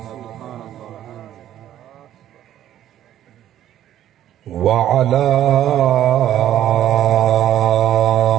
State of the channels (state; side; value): quieter; left; 11.8 dB